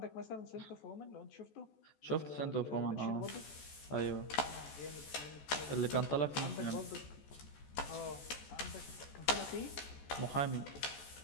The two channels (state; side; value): late; right; 14 ms